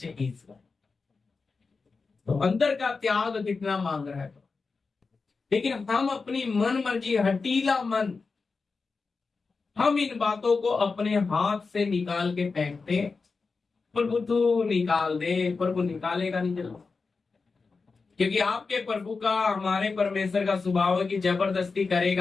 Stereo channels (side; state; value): right; quieter; 4.4 dB